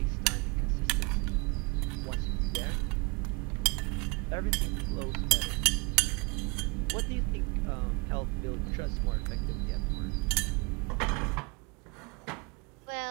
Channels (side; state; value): left; quieter; 29.0 dB